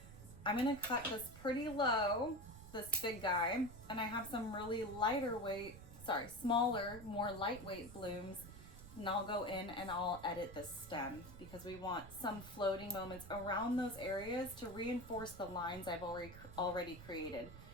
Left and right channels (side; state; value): right; noise; rumble, 15 dB below the sound